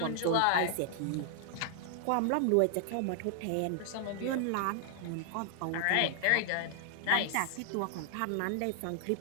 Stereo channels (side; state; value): both; different; correlation 0.00